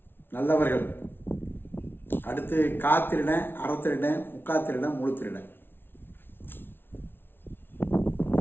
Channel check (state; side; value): late; right; 0.11 ms